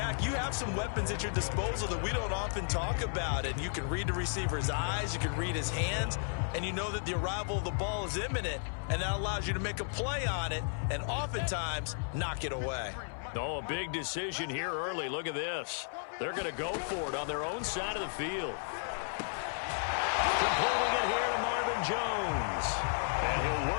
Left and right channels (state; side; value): silent; right; 55 dB below the other